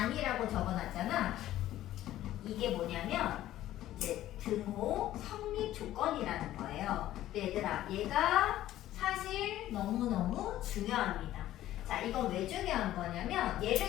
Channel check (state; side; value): quieter; right; 13.8 dB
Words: 적어놨잖아. 이게 뭐냐면 이제 등호 성립 조건이라는 거예요. 근데 얘들아, 얘가 사실 너무너무 중요합니다. 자, 이건 왜 중요한 거냐면